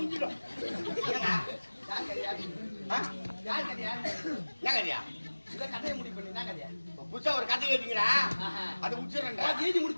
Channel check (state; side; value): inverted; both; correlation -1.00